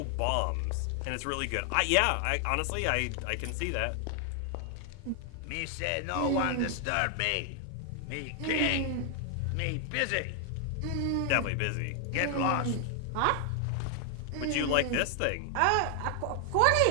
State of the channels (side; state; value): both; different; correlation 0.00